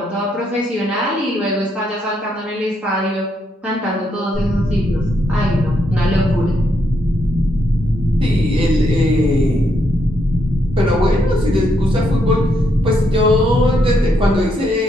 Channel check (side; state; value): both; normal; correlation 0.77